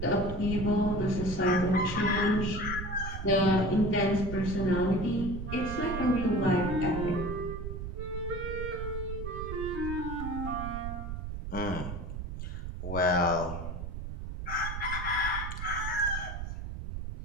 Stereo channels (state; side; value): noise; right; rumble, 6 dB below the sound